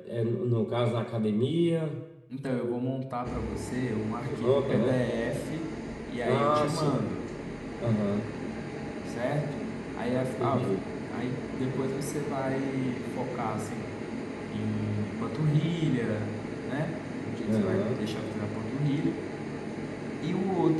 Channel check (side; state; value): both; identical; correlation 1.00